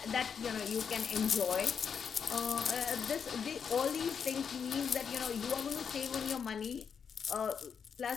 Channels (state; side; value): quieter; right; 6.8 dB